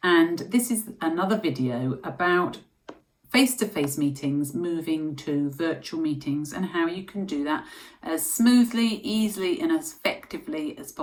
and this is another video about face-to-face meetings moving to virtual meetings and how you can do that as smoothly, easily and as effectively as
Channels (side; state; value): both; identical; correlation 1.00